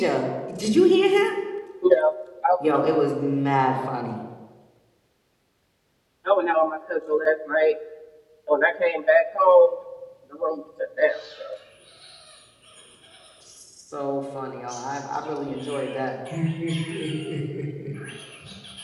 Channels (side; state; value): both; identical; correlation 1.00